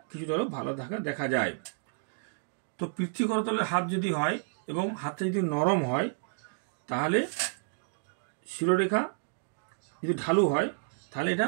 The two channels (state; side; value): silent; left; digital silence